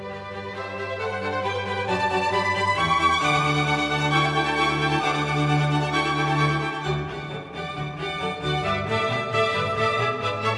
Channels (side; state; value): both; identical; correlation 1.00